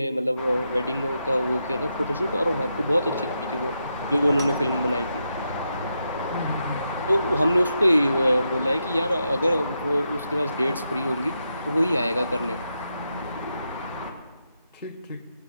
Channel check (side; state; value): both; inverted; correlation -0.84